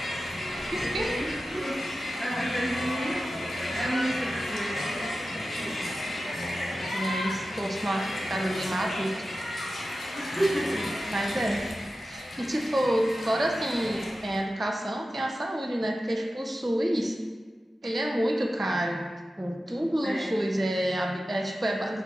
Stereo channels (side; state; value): both; normal; correlation 0.94